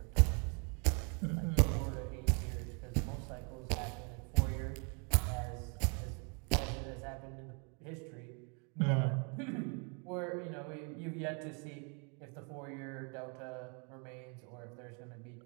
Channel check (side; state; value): left; quieter; 36.5 dB